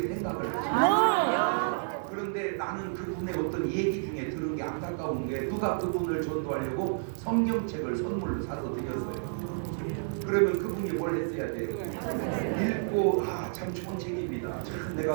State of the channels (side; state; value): left; silent; 58 dB below the other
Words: 생각을 하시죠. 그런데 나는 그분의 어떤 얘기 중에 들은 게 안타까운 게, 누가 그분을 전도하려고 성경책을 선물로 사서 드렸어요. 그러면 그분이 뭘 했어야 돼요? 읽고 참 좋은 책입니다. 참